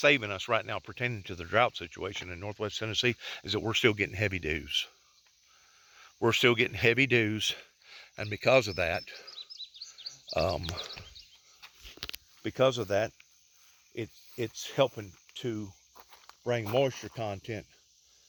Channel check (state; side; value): identical; both; correlation 1.00